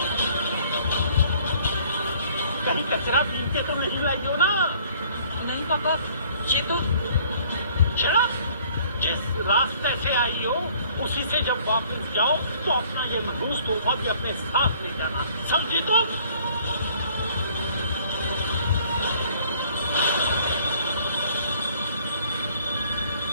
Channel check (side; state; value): both; inverted; correlation -0.58